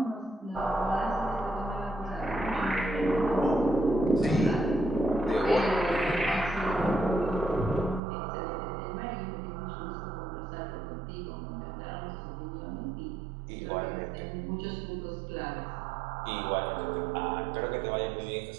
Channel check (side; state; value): left; drops out; at 8.0 s